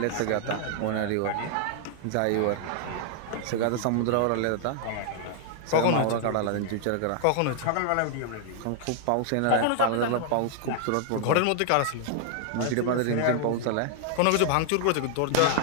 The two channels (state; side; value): different; both; correlation 0.00